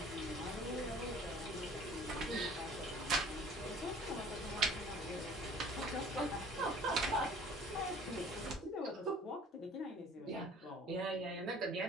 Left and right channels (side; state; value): both; normal; correlation 0.50